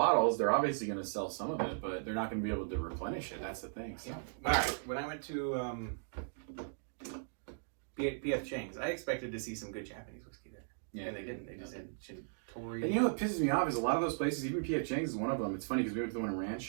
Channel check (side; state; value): left; silent; digital silence